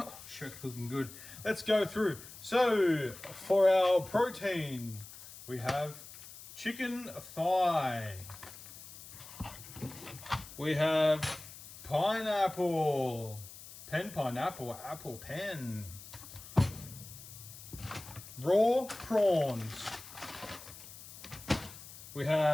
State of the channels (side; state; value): left; noise; hiss, 15 dB below the sound